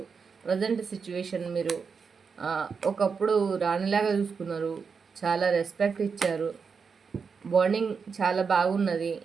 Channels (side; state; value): left; quieter; 5.6 dB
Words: ప్రజెంట్ సిచ్యువేషన్ మీరు ఒకప్పుడు రాణిలాగా చూసుకున్నారు, చాలా రెస్పెక్ట్ ఇచ్చారు, బాండింగ్ చాలా బాగున్నది